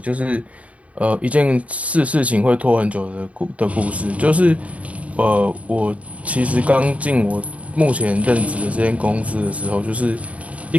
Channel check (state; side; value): late; left; 0.067 ms